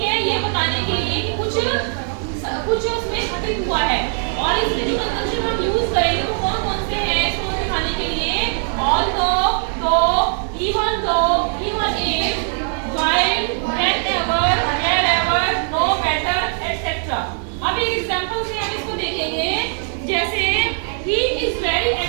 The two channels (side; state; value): left; silent; 55 dB below the other